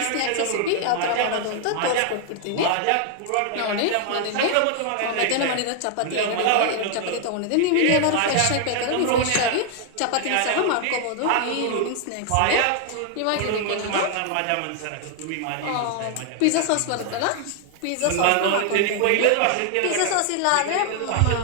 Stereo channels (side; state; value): both; different; correlation 0.00